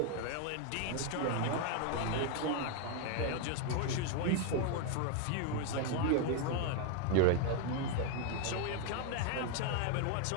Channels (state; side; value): different; both; correlation 0.01